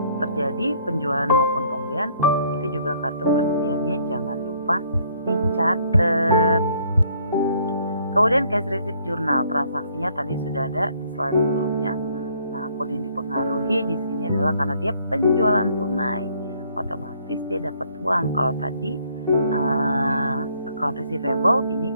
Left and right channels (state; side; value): inverted; both; correlation -0.64